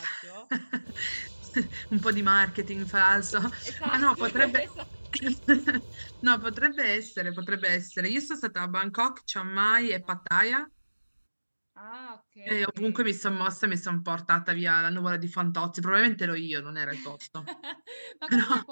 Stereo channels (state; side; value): inverted; both; correlation -1.00